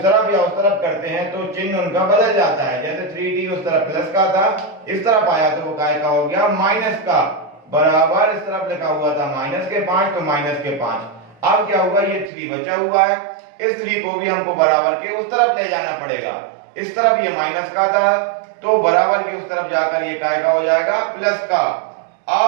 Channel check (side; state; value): left; drops out; at 12.3 s